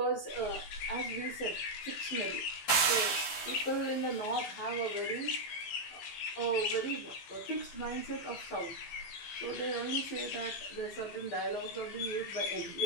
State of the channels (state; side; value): late; right; 15 ms